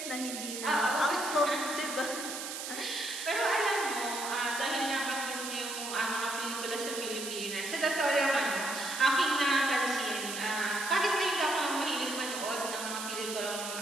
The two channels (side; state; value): right; noise; hiss, 6 dB below the sound